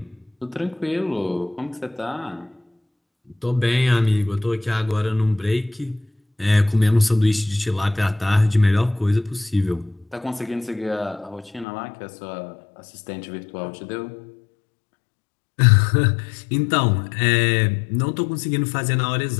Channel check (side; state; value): right; drops out; at 11.7 s